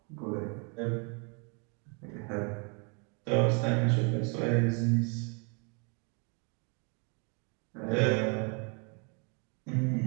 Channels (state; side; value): quieter; left; 35.3 dB